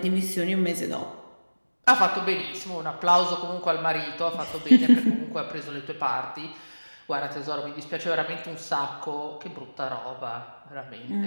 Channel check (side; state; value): both; inverted; correlation -1.00